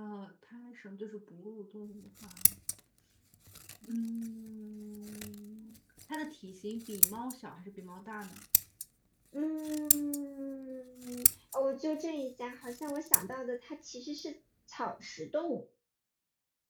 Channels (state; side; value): identical; both; correlation 1.00